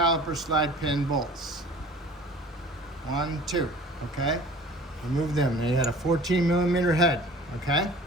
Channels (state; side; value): normal; both; correlation 0.45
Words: slide pin bolts. 1, 2, okay? Remove them. They had a 14 millimeter head, okay?